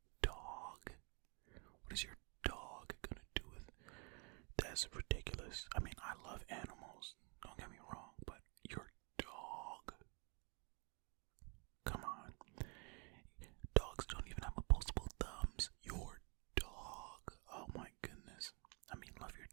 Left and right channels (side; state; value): left; quieter; 33.8 dB